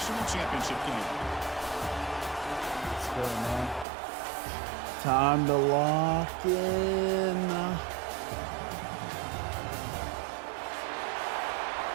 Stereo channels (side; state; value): left; drops out; at 3.9 s